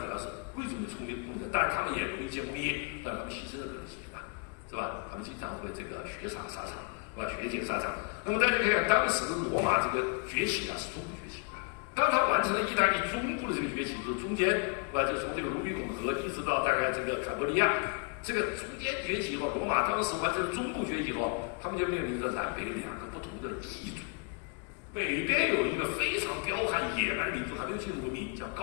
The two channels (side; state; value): right; quieter; 37.1 dB